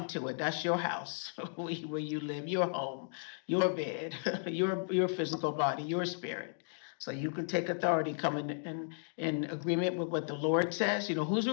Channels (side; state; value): right; silent; digital silence